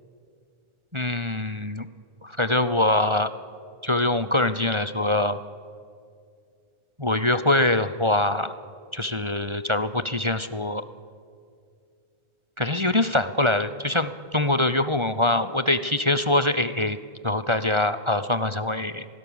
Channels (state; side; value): late; left; 1.4 ms